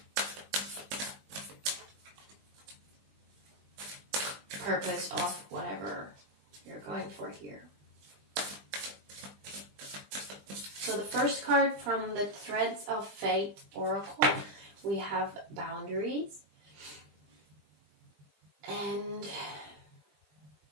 purpose of whatever you're going for here. So the first card from the Threads of Fate Oracle, we have boundaries. And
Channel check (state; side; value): late; left; 20 ms